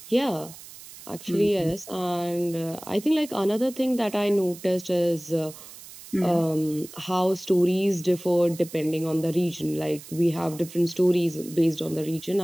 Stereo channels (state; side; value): noise; right; hiss, 17 dB below the sound